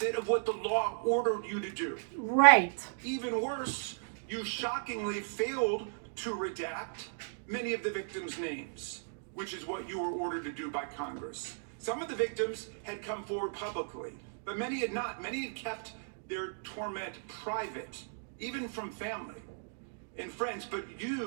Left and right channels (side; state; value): left; silent; digital silence